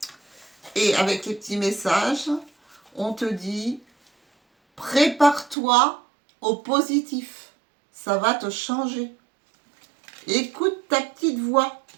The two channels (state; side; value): drops out; left; at 5.6 s